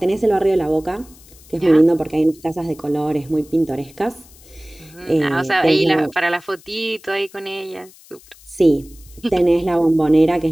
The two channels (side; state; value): left; noise; hiss, 24 dB below the sound